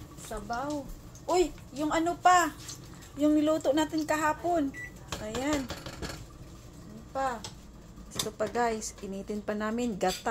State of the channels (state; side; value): identical; both; correlation 1.00